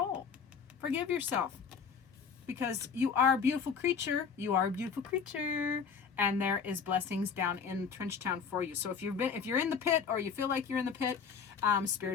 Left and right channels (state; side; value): quieter; right; 6.2 dB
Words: Forgive yourself, because you are a beautiful creature. You are a beautiful creature, and there is blessings down in Trench Town for you. So if you're in the pit, or you feel like you're in the pit,